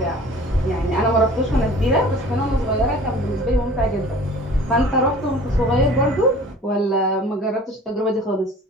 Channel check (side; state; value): both; normal; correlation 0.46